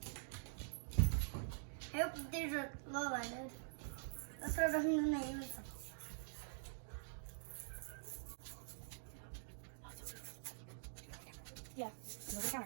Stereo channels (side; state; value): left; silent; digital silence